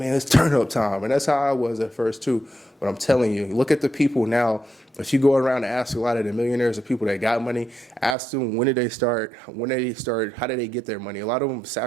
It's turn up time. And that's how I was at first, too. But I'm telling you, look at the people now. If you go around and ask a lot of the millionaires or people that got money, ask them when did they start, how did they get their money? A lot of them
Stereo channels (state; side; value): drops out; left; at 8.2 s